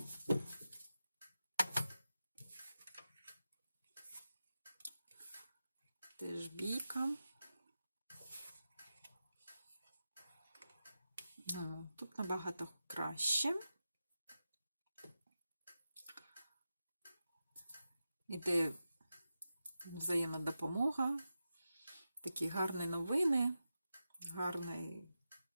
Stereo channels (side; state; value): both; inverted; correlation -0.91